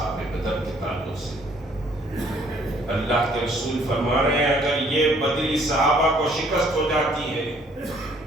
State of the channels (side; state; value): both; normal; correlation 0.62